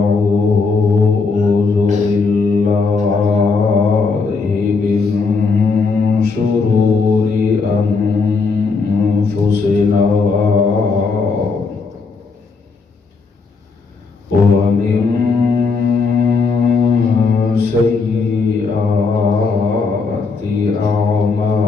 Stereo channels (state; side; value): quieter; right; 4.6 dB